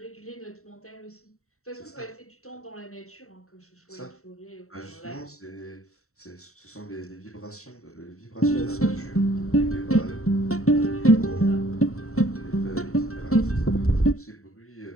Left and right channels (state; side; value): late; right; 0.64 ms